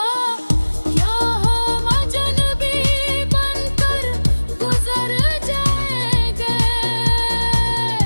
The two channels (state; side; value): inverted; both; correlation -1.00